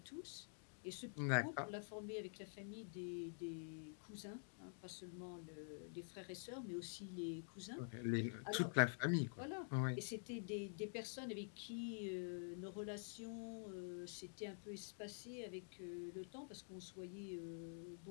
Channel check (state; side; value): silent; right; digital silence